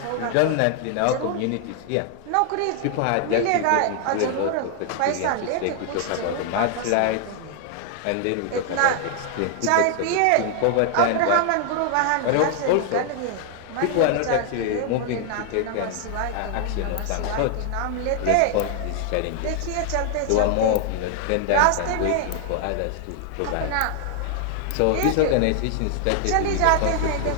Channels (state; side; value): different; both; correlation 0.00